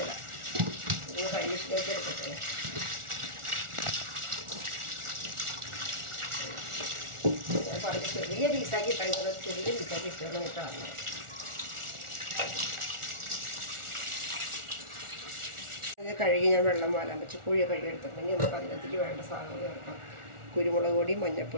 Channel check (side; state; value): left; late; 1.4 ms